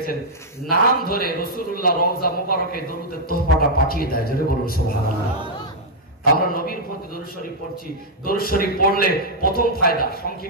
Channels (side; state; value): both; normal; correlation -0.05